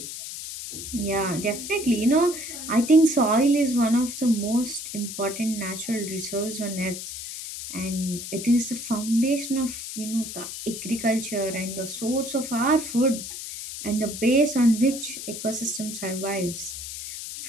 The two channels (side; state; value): left; noise; hiss, 8 dB below the sound